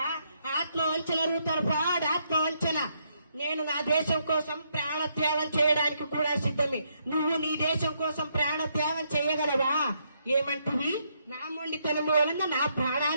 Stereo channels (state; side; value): inverted; both; correlation -0.75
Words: ఆత్మవంచన రూతర్ ఫ్రాడ్, ఆత్మవంచన. నేను నా దేశం కోసం ప్రాణత్యాగం చేయడానికి కూడా సిద్ధమే. నువ్వు నీ దేశం కోసం ప్రాణత్యాగం చేయగలవా? ఏమంటివి? నా మొండితనం వలన నా